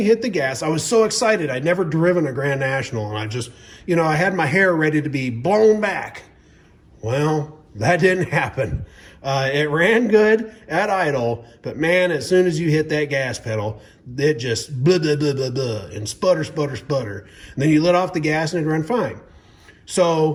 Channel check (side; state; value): both; identical; correlation 1.00